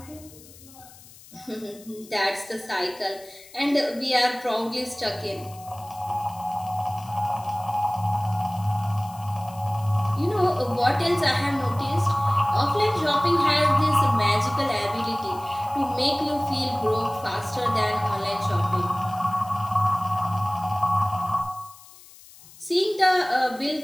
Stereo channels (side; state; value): left; noise; hiss, 21 dB below the sound